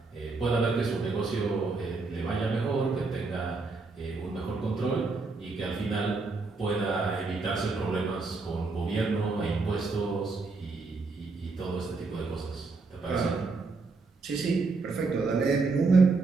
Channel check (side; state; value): left; quieter; 4.0 dB